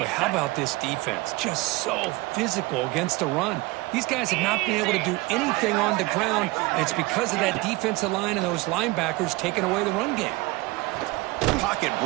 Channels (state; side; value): quieter; left; 22.1 dB